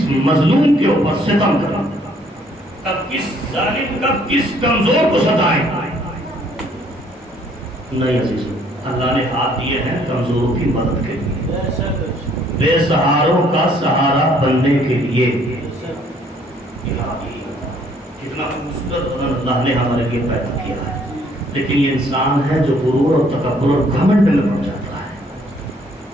مظلوم کے اوپر ستم کریں، کب کس ظالم، کب کس کمزور کو ستائیں. نہیں عزیزوں، اللہ نے ہاتھ دیے ہیں کمزوروں کی مدد کے لیے، بے سہاروں کا سہارا بننے کے لیے. کتنا خوبصورت بدن اللہ نے ہمارے لیے پیدا کیا ہے، لیکن یہ انسان ہے جو غرور اور تکبر اور گھمنڈ میں پڑ جاتا ہے.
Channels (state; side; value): normal; both; correlation 0.63